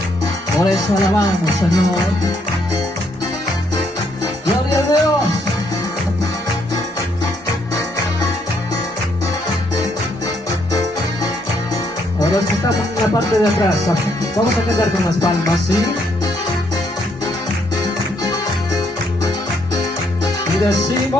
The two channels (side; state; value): both; normal; correlation 0.72